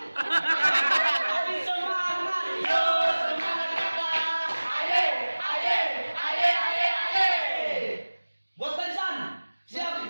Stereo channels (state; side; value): inverted; both; correlation -1.00